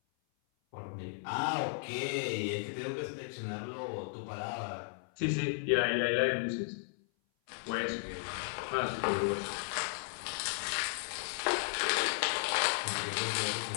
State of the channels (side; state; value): right; silent; 54 dB below the other